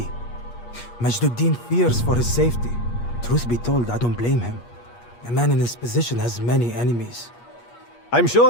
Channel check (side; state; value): right; late; 8.4 ms